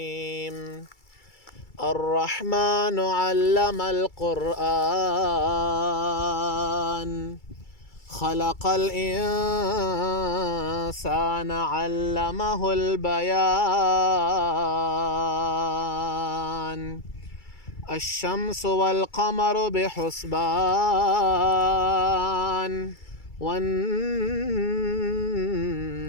الرحمن علم القرآن، خلق الإنسان علمه البيان. الشمس والقمر بحسبان، والنجم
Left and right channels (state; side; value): late; right; 2.3 ms